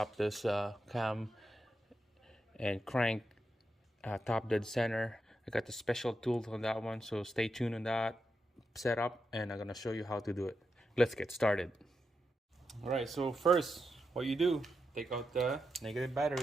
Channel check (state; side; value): normal; both; correlation 0.86